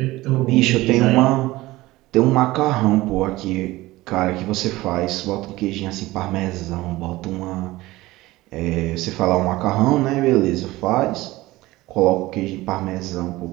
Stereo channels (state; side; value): quieter; left; 18.7 dB